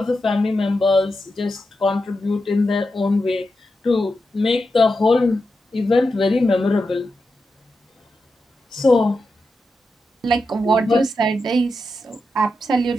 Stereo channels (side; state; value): both; normal; correlation 0.88